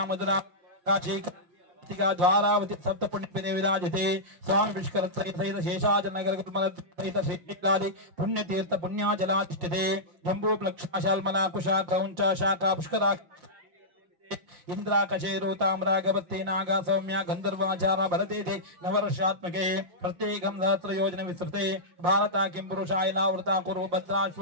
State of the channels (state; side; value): late; left; 5.7 ms